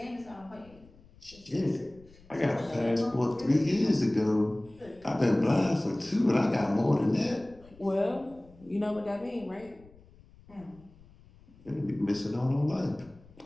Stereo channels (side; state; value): left; noise; rumble, 25 dB below the sound